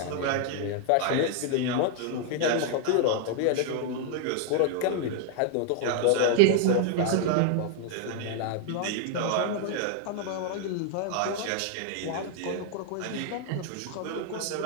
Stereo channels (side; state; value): both; different; correlation 0.00